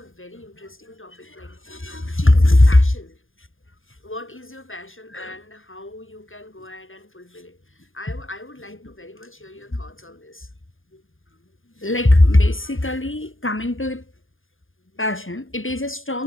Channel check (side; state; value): right; late; 0.59 ms